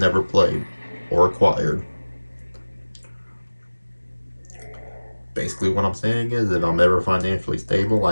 played or acquired. Basically, what I'm saying is, if I'm ever financially stable,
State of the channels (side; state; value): both; inverted; correlation -1.00